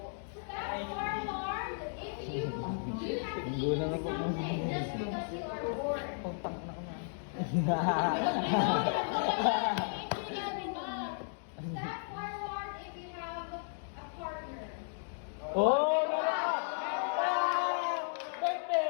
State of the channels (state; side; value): silent; right; digital silence